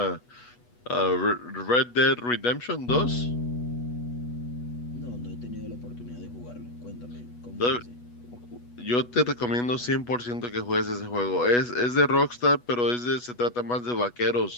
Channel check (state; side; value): late; right; 8.2 ms